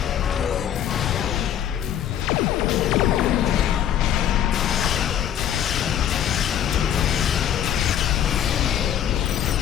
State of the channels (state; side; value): quieter; right; 10.1 dB